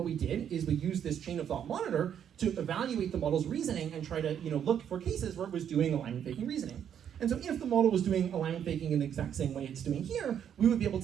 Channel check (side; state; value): left; quieter; 9.0 dB